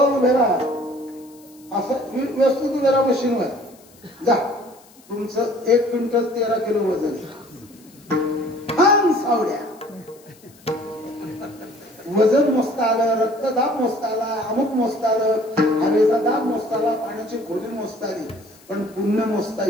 उभे राहा. असं व्यवस्थित उभे राहा मशीनवर. जा तुमचं 1 क्विंटल 13 किलो वजन. सावड्या वजन मोजता आलं, रक्तदाब मोजता आला, अमुक मोजता आलं, हवेचा दाब मोजता आला, पाण्याची खोली मोजता आली, पण पुण्य मोजता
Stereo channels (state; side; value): noise; left; hiss, 27 dB below the sound